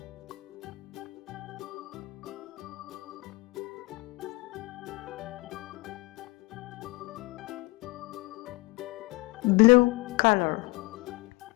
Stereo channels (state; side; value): quieter; right; 24.7 dB